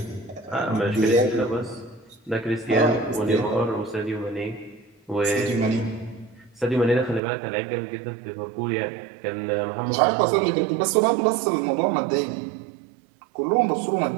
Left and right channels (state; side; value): drops out; left; at 7.2 s